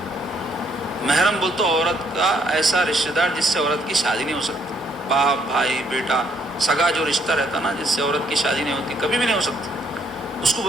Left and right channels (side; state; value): both; normal; correlation 0.69